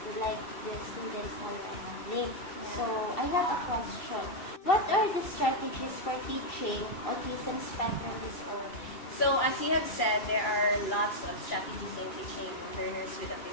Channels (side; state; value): right; late; 2.4 ms